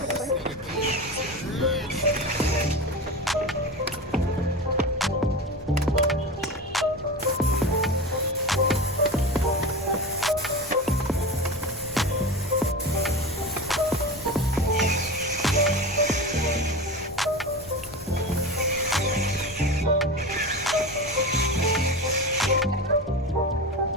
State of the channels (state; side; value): normal; both; correlation 0.27